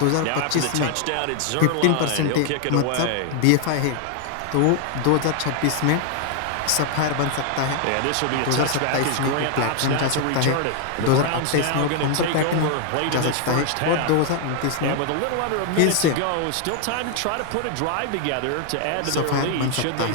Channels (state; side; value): different; both; correlation 0.00